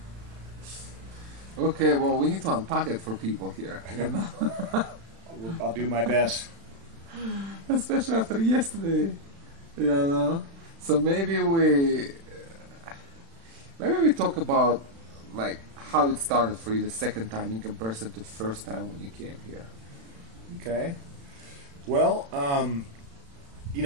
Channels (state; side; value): late; left; 36 ms